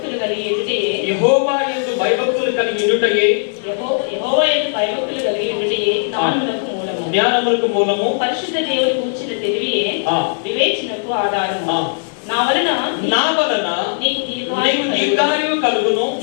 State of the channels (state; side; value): silent; right; digital silence